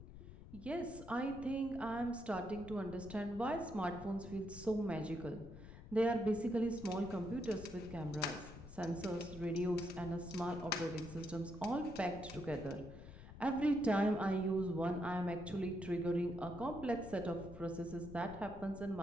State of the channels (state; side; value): noise; left; rumble, 14 dB below the sound